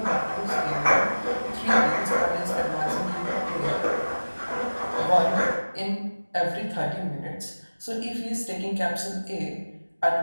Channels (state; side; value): inverted; both; correlation -1.00